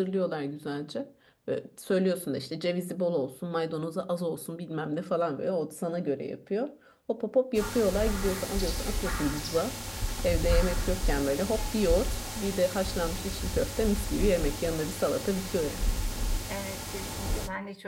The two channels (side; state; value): both; identical; correlation 1.00